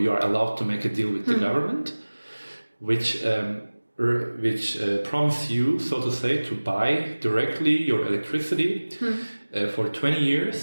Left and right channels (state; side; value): inverted; both; correlation -1.00